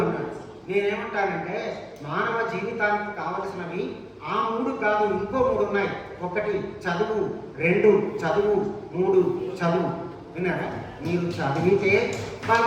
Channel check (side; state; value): both; identical; correlation 1.00